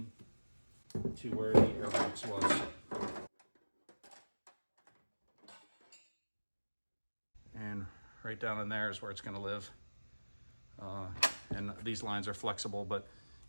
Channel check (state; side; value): inverted; both; correlation -1.00